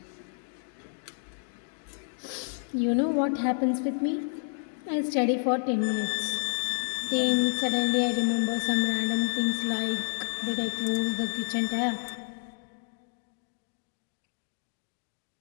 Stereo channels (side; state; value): right; silent; digital silence